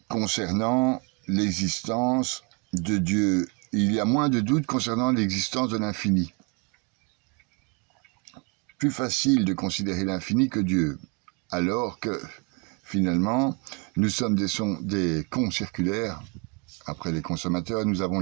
concernant l'existence de Dieu. Il y a moins de doutes concernant l'existence de l'infini. Plus facile de considérer l'infini que Dieu, alors que finalement, nous sommes des cons circulaires. Après les consommateurs, nous avons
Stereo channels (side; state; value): left; quieter; 33.0 dB